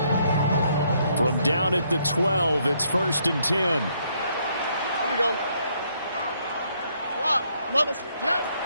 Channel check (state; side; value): inverted; both; correlation -0.71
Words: From down at the 12, it's 1st and 10. Here we go.